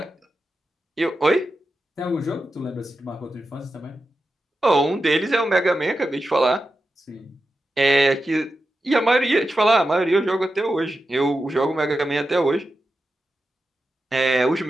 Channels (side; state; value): both; normal; correlation 0.90